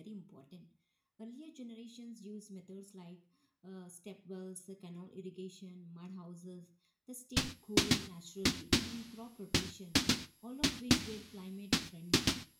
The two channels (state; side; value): identical; both; correlation 1.00